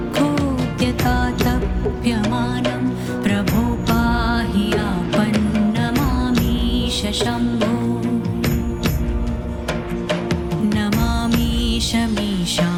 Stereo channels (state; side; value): identical; both; correlation 1.00